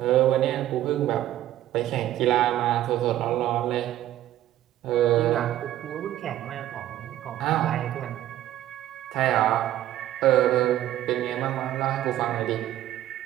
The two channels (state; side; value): quieter; left; 13.3 dB